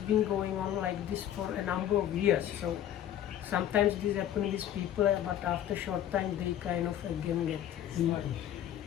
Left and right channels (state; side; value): quieter; right; 11.0 dB